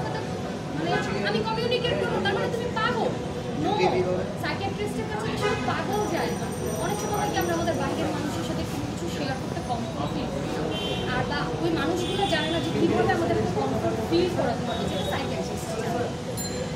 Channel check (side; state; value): both; identical; correlation 1.00